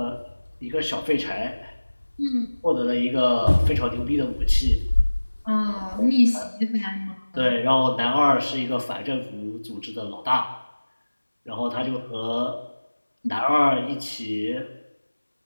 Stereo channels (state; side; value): inverted; both; correlation -1.00